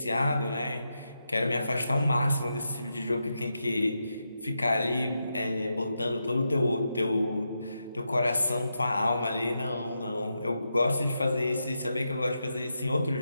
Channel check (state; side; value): inverted; both; correlation -0.86